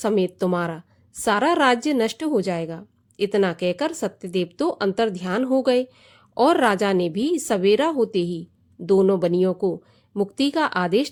तुम्हारा सारा राज्य नष्ट हो जाएगा। इतना कहकर सत्यदेव तो अंतर्ध्यान हो गए और राजा ने भी सवेरा होते ही दोनों बनियों को मुक्ति का आदेश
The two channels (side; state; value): both; identical; correlation 1.00